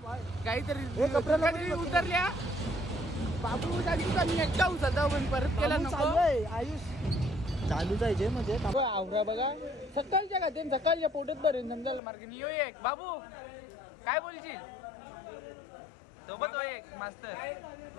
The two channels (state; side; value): drops out; right; at 12.0 s